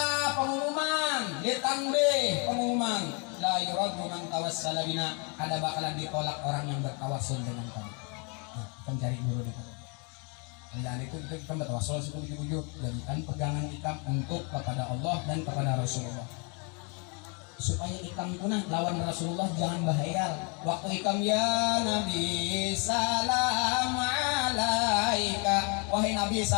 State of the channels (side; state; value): right; quieter; 34.8 dB